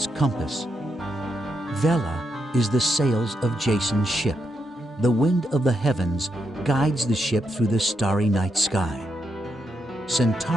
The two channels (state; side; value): normal; both; correlation 0.82